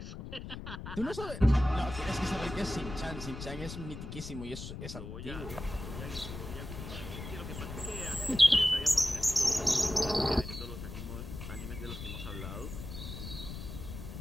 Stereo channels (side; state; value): left; noise; rumble, 9 dB below the sound